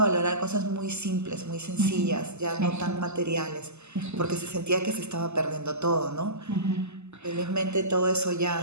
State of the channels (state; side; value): late; left; 0.81 ms